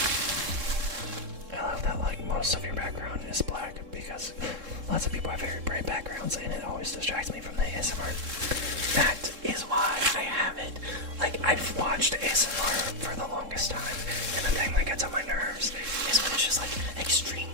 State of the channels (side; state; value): left; late; 3.7 ms